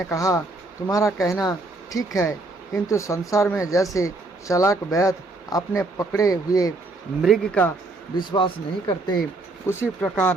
कहा, तुम्हारा कहना ठीक है, किंतु संसार में जैसे चालाक वैद्य अपने पकड़े हुए मृग का विश्वास नहीं करते, उसी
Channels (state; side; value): quieter; left; 3.0 dB